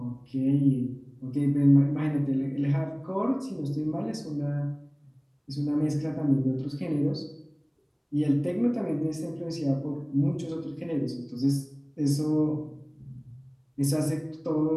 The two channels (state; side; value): identical; both; correlation 1.00